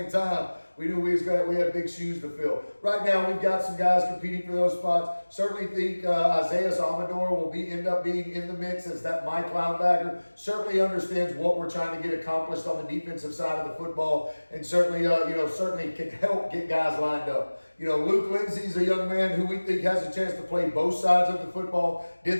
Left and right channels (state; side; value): inverted; both; correlation -1.00